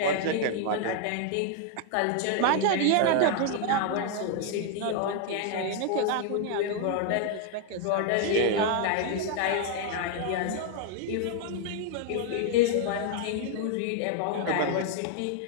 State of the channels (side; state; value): both; different; correlation 0.00